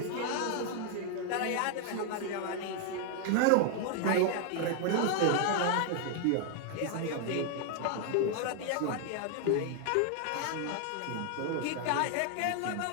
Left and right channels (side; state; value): both; different; correlation 0.00